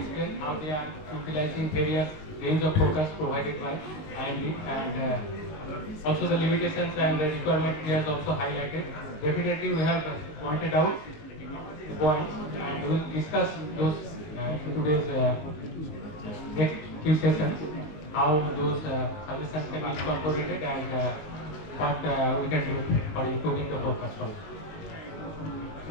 how they are utilizing various range of focus provided by IMD, and also the limitations and the requirement he has also highlighted. Definitely we have pointed out the points, and we will discuss those in today's next few sessions, how those suggestions can be incorporated and what we can do for improving the forecast.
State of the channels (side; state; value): right; late; 20 ms